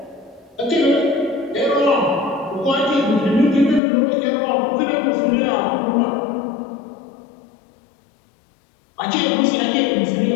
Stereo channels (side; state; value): right; drops out; at 3.8 s